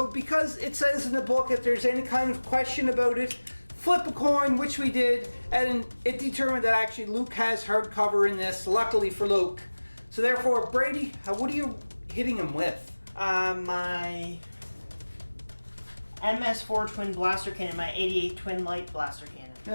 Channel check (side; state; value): both; inverted; correlation -1.00